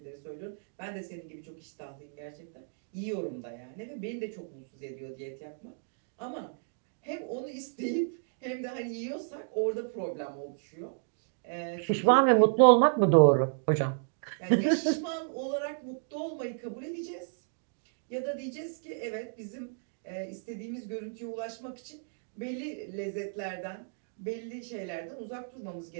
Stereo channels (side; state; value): left; silent; digital silence